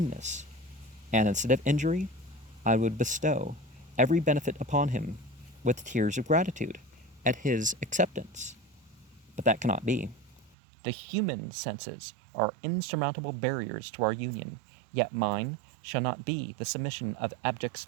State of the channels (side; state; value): left; drops out; at 10.6 s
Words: and instead of injury, I would bestow every benefit upon him with tears of gratitude at his acceptance. But that cannot be. The human senses are insurmountable barriers to our union, yet mine shall not be the submission of abject